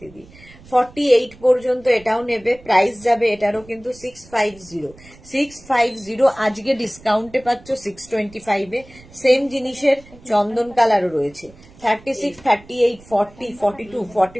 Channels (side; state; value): right; noise; rumble, 23 dB below the sound